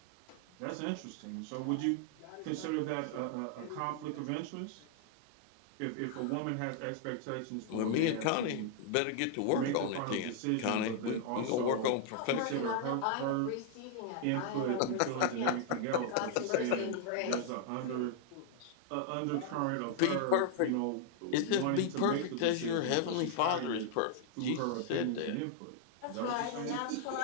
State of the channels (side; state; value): both; different; correlation -0.01